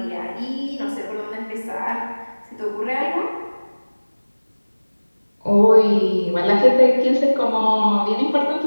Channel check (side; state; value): both; inverted; correlation -1.00